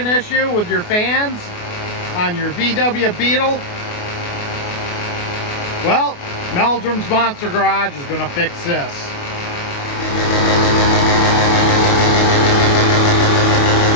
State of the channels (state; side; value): late; right; 28 ms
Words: issue with your fans on your VW Beetle? Well, Meldrum's Monster Garage is going to fix this.